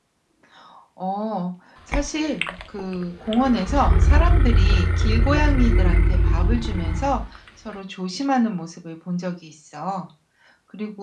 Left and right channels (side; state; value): both; identical; correlation 1.00